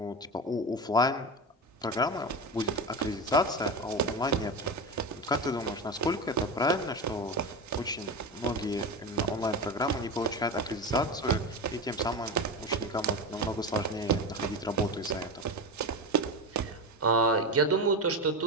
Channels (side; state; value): both; normal; correlation 0.21